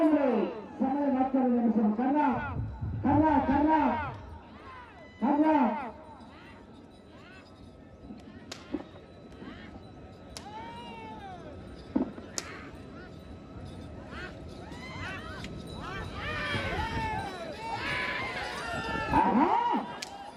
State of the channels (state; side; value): identical; both; correlation 1.00